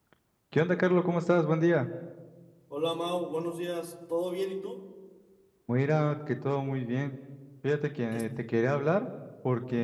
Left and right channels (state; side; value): identical; both; correlation 1.00